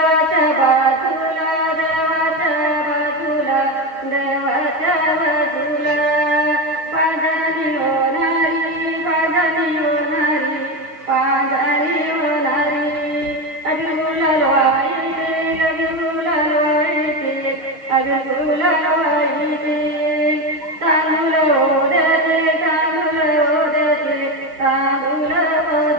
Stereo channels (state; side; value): late; left; 6.2 ms